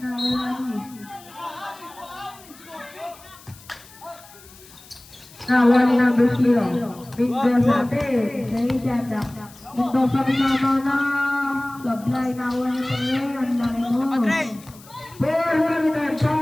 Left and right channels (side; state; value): left; noise; hiss, 22 dB below the sound